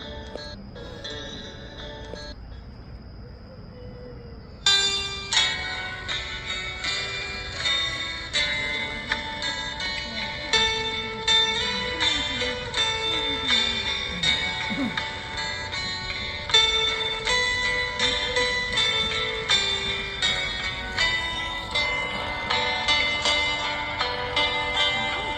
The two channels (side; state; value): both; identical; correlation 1.00